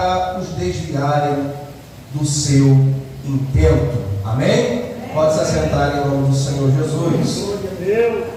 os desviarem do seu intento. Amém? Pode se assentar em nome do Senhor Jesus.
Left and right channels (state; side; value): identical; both; correlation 1.00